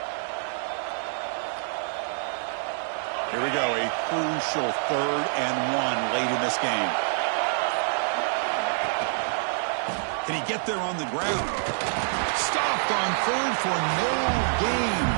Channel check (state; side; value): silent; left; digital silence